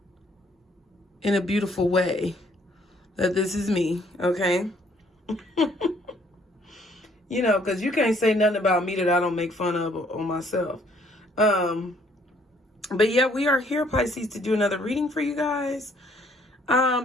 in a beautiful way that this is me. Okay. You know, because you can't say nothing about me that I don't make fun of on myself. But yeah, we are here, Pisces, to do another reading for you guys.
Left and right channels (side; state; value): both; normal; correlation 0.64